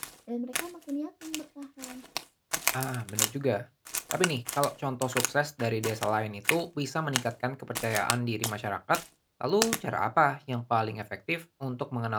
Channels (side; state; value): both; identical; correlation 1.00